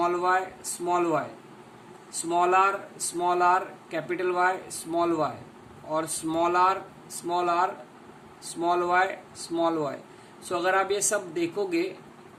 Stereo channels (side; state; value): both; identical; correlation 1.00